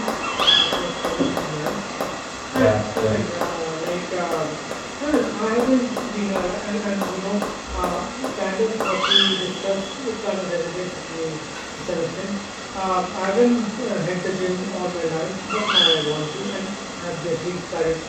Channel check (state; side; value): identical; both; correlation 1.00